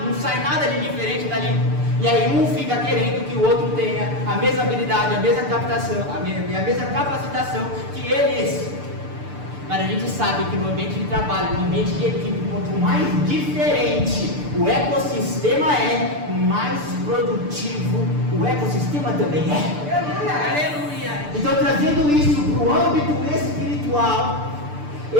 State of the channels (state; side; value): late; left; 6.8 ms